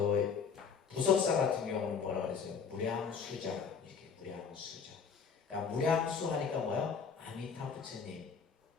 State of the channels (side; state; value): right; quieter; 6.2 dB